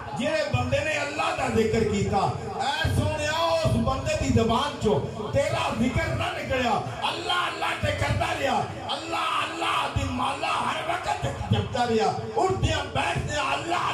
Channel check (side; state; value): both; identical; correlation 1.00